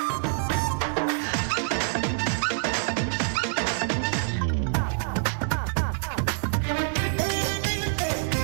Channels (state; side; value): silent; left; digital silence